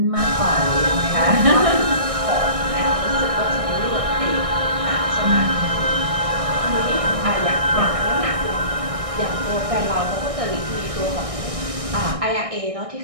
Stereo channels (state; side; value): late; left; 1.6 ms